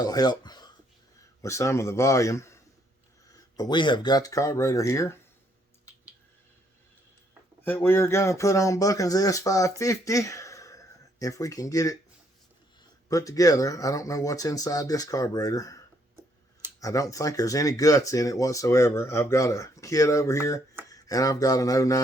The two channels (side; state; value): both; normal; correlation 0.70